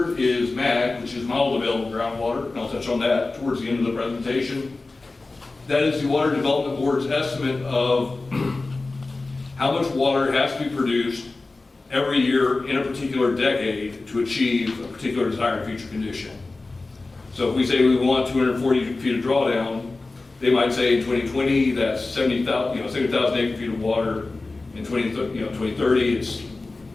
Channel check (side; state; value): right; quieter; 3.4 dB